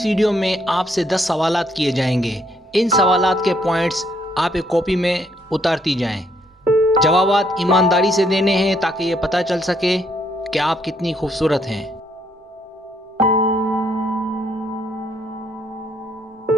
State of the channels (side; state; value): both; normal; correlation 0.70